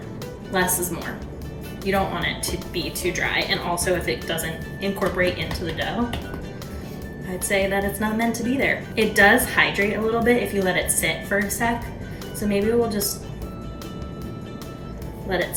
less is more. You don't want it to be too dry, and also if it doesn't incorporate into the dough, I'd say that it's not meant to be there. It does hydrate a little bit if you let it sit for a sec, so maybe we'll just let it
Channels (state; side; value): identical; both; correlation 1.00